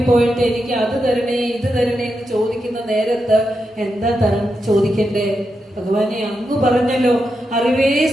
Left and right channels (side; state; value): both; normal; correlation 0.86